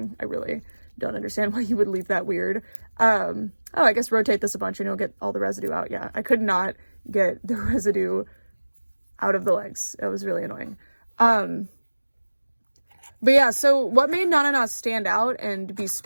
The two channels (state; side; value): inverted; both; correlation -1.00